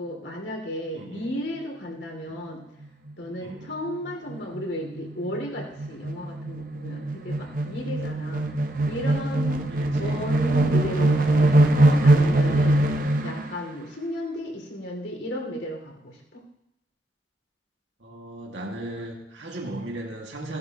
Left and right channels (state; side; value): normal; both; correlation 0.77